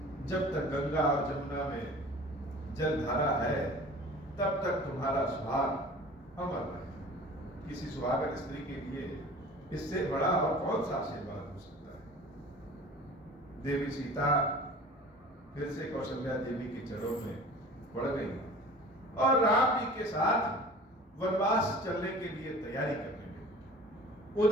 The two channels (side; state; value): both; normal; correlation 0.42